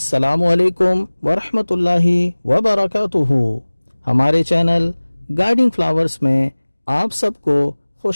علیکم ورحمۃ اللہ وبرکاتہ۔ ہمارے چینل گائیڈنگ فلاورز میں آپ سب کو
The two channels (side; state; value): both; inverted; correlation -1.00